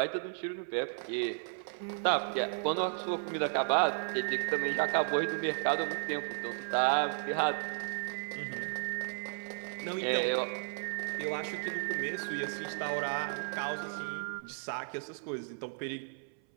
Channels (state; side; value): silent; left; 55 dB below the other